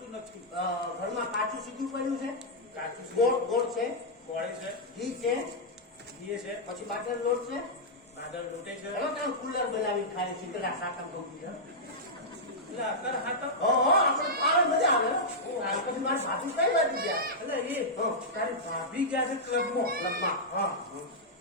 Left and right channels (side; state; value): both; normal; correlation -0.08